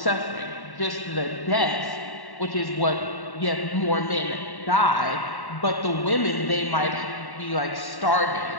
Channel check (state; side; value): late; right; 1.1 ms